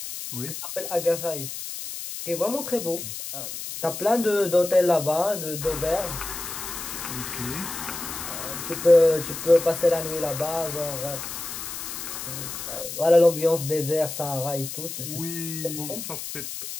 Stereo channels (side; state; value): left; noise; hiss, 7 dB below the sound